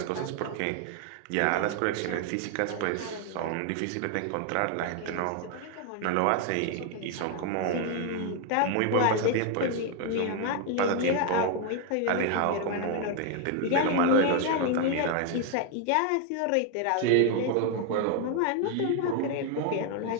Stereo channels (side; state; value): both; different; correlation 0.00